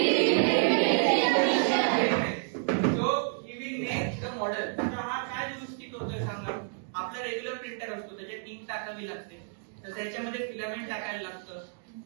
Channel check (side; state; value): left; silent; digital silence